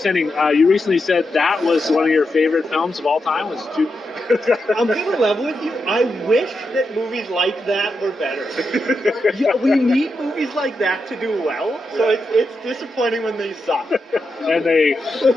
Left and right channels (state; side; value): normal; both; correlation 0.86